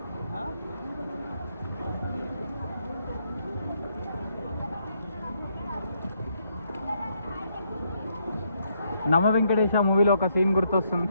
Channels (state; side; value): inverted; both; correlation -0.75